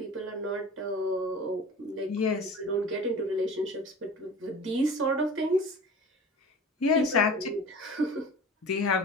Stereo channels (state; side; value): normal; both; correlation 0.38